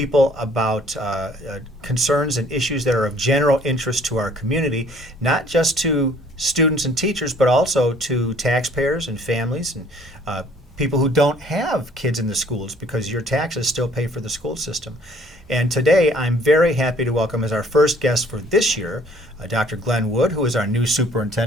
about concerns and issues that are of general interest to our community, not just to students and teachers, but also to taxpayers and families and people who don't have kids in the schools, because your taxes still pay for the school system. And today I'm very happy to welcome as our first guest for this year, Dr. Glenn Wood, who is our new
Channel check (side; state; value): both; normal; correlation 0.58